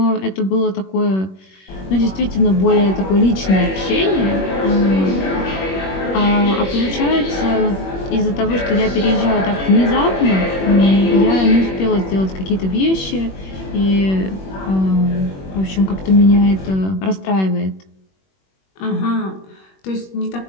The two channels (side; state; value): right; late; 21 ms